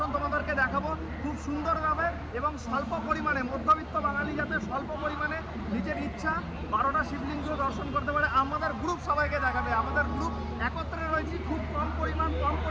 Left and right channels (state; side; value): identical; both; correlation 1.00